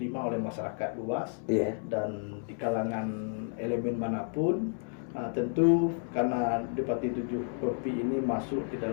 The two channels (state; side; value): silent; right; 57 dB below the other